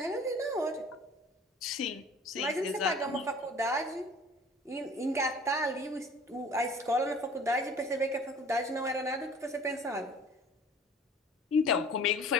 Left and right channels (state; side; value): normal; both; correlation 0.48